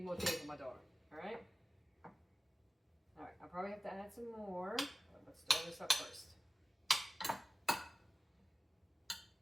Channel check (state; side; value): normal; both; correlation 0.96